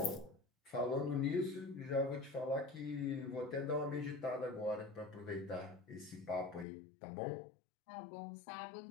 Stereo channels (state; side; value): drops out; right; at 6.7 s